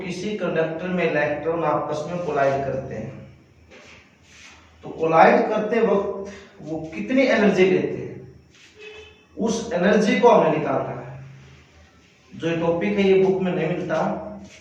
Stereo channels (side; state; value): both; identical; correlation 1.00